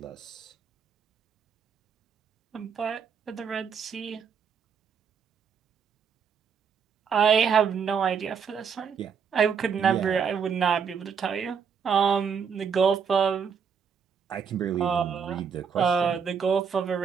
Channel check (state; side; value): quieter; left; 6.6 dB